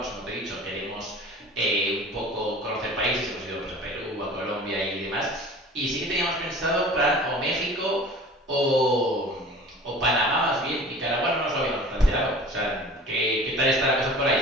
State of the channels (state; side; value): normal; both; correlation 0.42